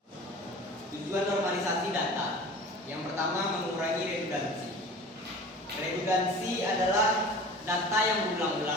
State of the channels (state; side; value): normal; both; correlation 0.40